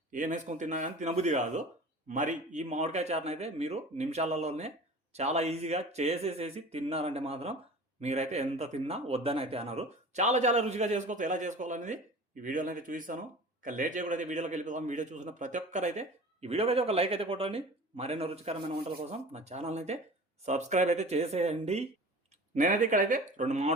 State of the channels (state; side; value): normal; both; correlation 0.40